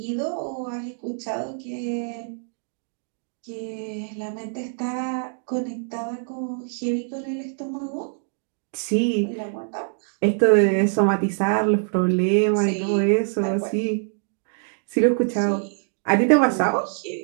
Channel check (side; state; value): left; silent; digital silence